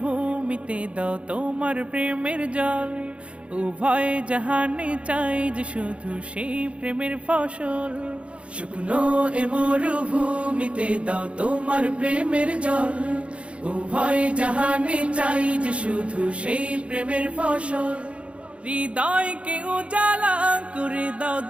দাও তোমার প্রেমের জল উভয় জাহানে চাই যে শুধু সেই প্রেমের ফসল শুকনো এ মরুভূমিতে দাও তোমার প্রেমের জল উভয় জাহানে চাই যে শুধু সেই প্রেমের ফসল হৃদয়কে উজালা করে দাও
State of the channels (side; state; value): left; late; 0.060 ms